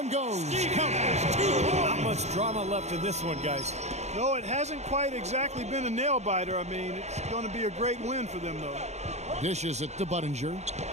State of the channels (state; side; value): late; left; 0.32 ms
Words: goes. Not much drama left in this one, guys. No, it hasn't quite exactly been a nail-biter. I mean, it's going to be a great win for them, though. Dishes it to Budinger.